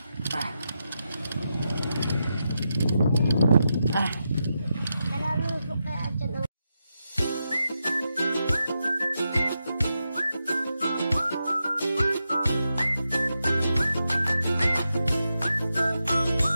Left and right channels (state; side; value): inverted; both; correlation -0.87